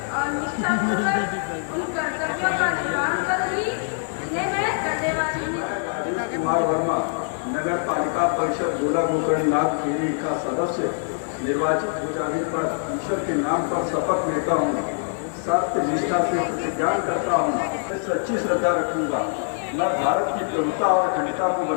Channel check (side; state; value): right; silent; 63 dB below the other